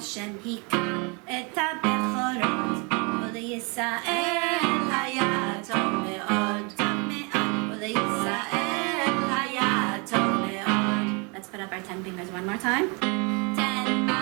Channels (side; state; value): left; quieter; 31.9 dB